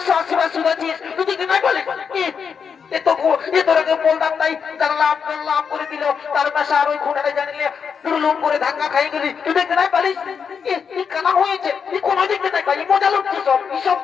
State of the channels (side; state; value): right; quieter; 6.5 dB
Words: বার শুনেছিস তুই কি নাই বলে এ তোরাকে বলতাম নাই লাভ করে দিল তার পাশে আর ওই খুঁটাটা জানিলে লুম করে ধাক্কা খাই গেলি তুই দেখতে নাই পারিস কানা হয়েছে কোনো দেখতে নাই পারি মজা লাগছে সব